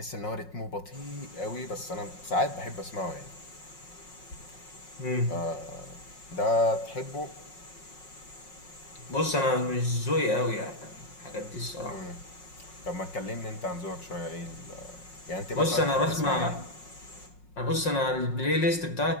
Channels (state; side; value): late; right; 5.5 ms